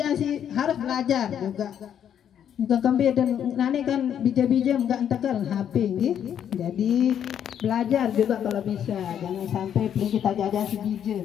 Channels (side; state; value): right; quieter; 9.2 dB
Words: si harus belajar juga. Bukan kembali dan nane kan bija-bija enggak entekan HP jadi belajar juga kalau bisa, jangan sampai kita jajan si bija.